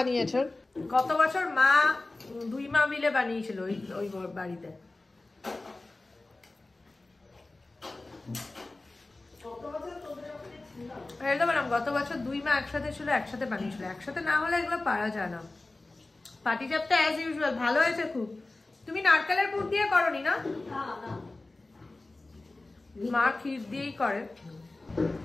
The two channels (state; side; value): quieter; right; 3.1 dB